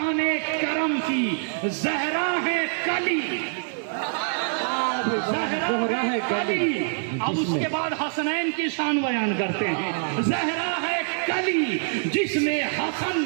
کرم کی. زہرا ہے کلی، زہرا ہے کلی. اب اس کے بعد حسنین کی شان بیان کرتے ہیں. زہرا ہے کلی جس میں حسن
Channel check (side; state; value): left; silent; digital silence